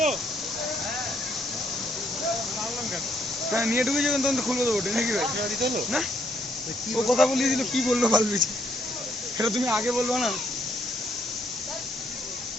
হ্যাঁ নিয়ে ঢুকে যাবেন তখন তো খুলবো তো বটে নাকি ভাই? না ও কথা বলিয়ে দিল, কি বললো ফালবিছি, এটা তুমি আগে বলবো না?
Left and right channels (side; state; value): both; normal; correlation 0.71